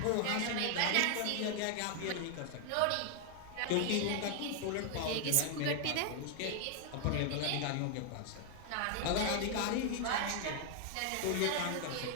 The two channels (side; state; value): both; different; correlation 0.00